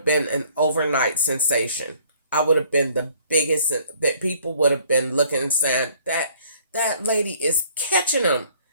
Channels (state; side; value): inverted; both; correlation -0.58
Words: been an overnight sensation. I would have been the biggest, that people would have been looking and saying that lady is catching them.